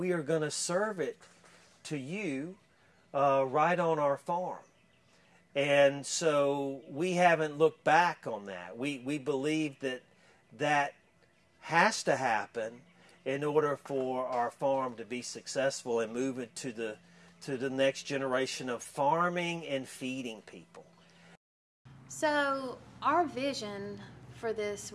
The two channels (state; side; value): identical; both; correlation 1.00